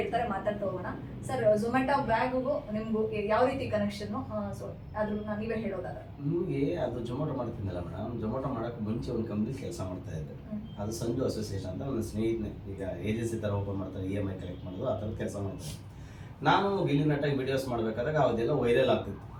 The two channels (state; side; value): identical; both; correlation 1.00